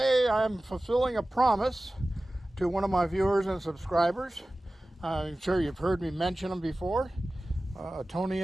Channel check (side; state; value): both; normal; correlation 0.96